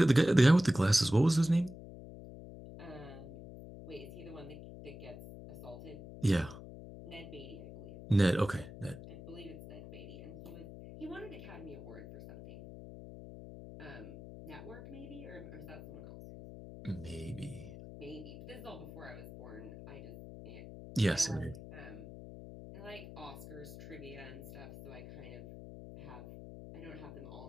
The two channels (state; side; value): noise; left; hum, 13 dB below the sound